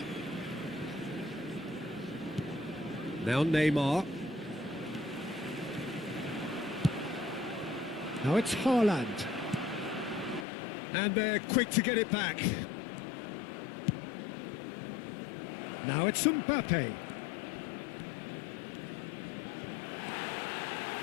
Now Neymar. Now it's Haaland. And they're quick to get it back. Now it's Mbappe.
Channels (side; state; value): right; drops out; at 10.5 s